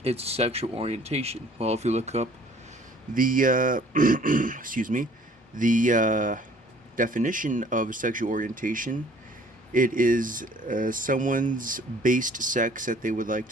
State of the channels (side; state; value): both; normal; correlation 0.55